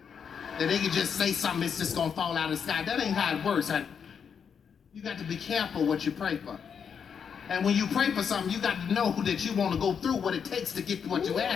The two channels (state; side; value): quieter; right; 7.0 dB